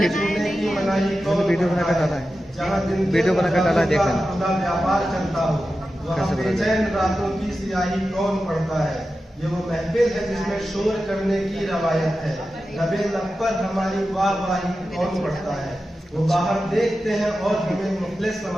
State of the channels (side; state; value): both; normal; correlation 0.92